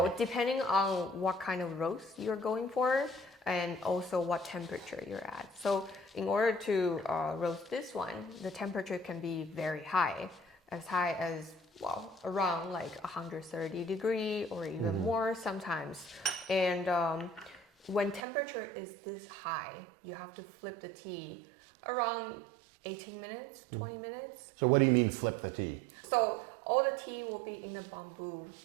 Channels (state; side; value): drops out; left; at 18.2 s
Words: depending on what kind of roast you're going for, and also what temperature you're at. So in order to roast this one, the temperature can be very high as around like 130 degree or even more sometimes. And when temperature is this high, you have to flip the tea around 18 minutes, 20 minutes. So what do you mean flip the tea? So all the tea will be in a bamboo